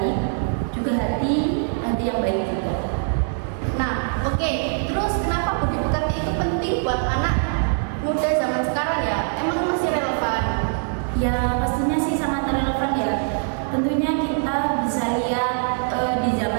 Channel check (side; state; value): left; silent; 64 dB below the other